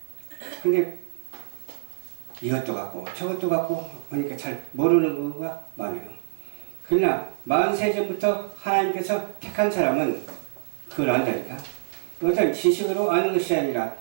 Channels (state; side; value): silent; left; digital silence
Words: 근데 이것도 같고 저것도 같고 하니까 잘 모르는 거가 많아요. 그러나 40세 전부터 하나님께서 택한 사람은 그걸 안다니까. 어떤 지식으로 아는 것이 아니라